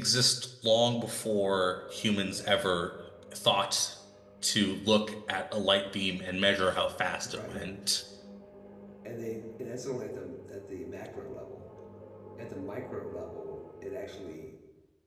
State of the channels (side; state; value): both; identical; correlation 1.00